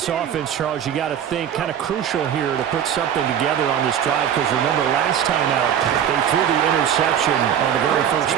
offense, Charles, you got to think kind of crucial here to put something together on this drive because remember last time out they threw the interception on the very first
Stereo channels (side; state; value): left; quieter; 9.3 dB